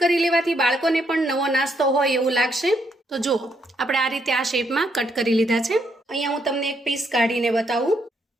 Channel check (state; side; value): normal; both; correlation 0.75